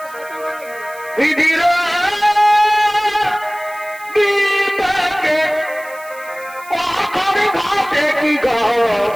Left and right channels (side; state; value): right; noise; hiss, 21 dB below the sound